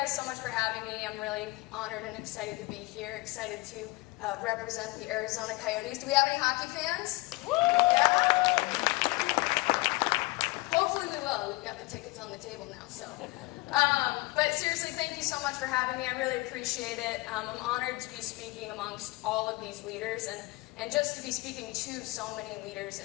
so much for having me. I'm really honored and excited to be here, excited to represent the Arizona Coyotes. Do we have any hockey fans? Woo! Yeah? Hopefully we will. We've got the tickets on the table now, so. But seriously, thank you so much for having me. I really appreciate it. I'm honored to be speaking amongst all of these leaders and just to be speaking to so many leaders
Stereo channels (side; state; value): right; quieter; 23.2 dB